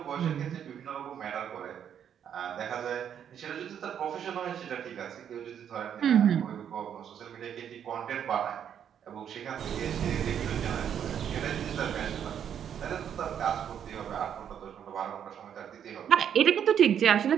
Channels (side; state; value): left; quieter; 8.9 dB